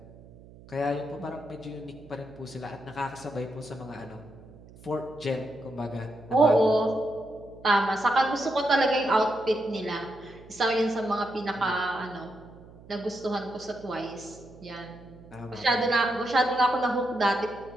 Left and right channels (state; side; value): noise; right; hum, 21 dB below the sound